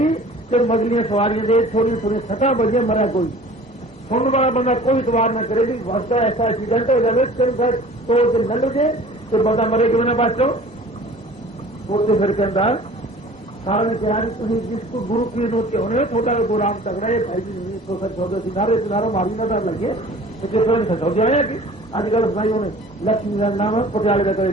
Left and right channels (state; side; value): normal; both; correlation 0.46